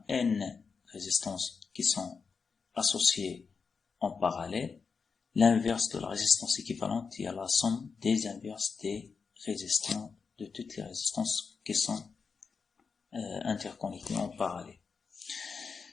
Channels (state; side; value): quieter; right; 5.3 dB